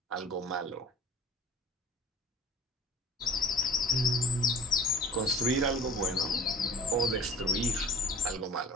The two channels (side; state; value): both; normal; correlation 0.43